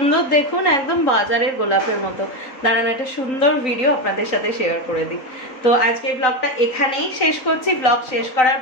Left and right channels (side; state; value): right; late; 3.9 ms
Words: দেখুন, একদম বাজারের গোলাপের মতো। দাঁড়ান একটা সুন্দর ভিডিও আপনাদের সাথে শেয়ার করে দিই। তো আজকে ব্লগটা এখানেই শেষ করছি। ব্লগ শেষ করার